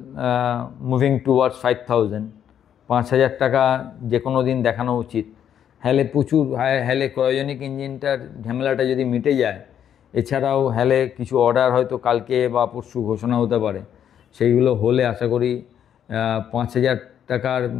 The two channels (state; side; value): quieter; right; 9.4 dB